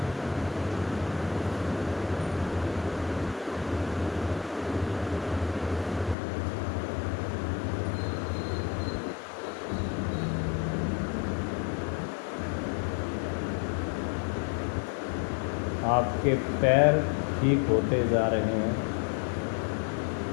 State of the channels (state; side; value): drops out; right; at 6.2 s